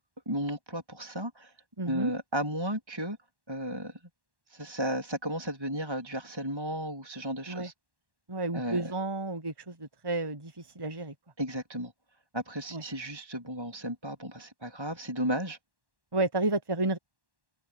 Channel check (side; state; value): left; late; 1.1 ms